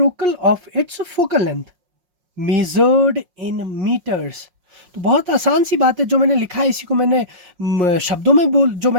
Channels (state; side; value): late; left; 5.5 ms